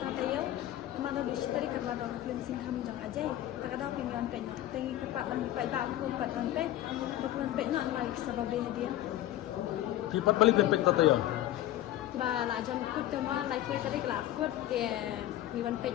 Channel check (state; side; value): quieter; right; 13.7 dB